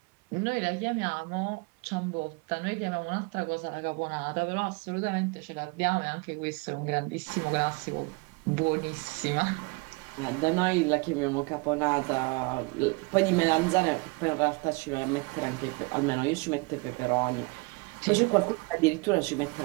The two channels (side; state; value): left; quieter; 28.2 dB